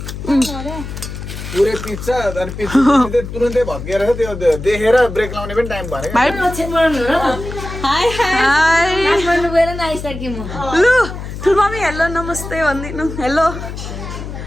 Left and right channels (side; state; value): left; noise; hum, 9 dB below the sound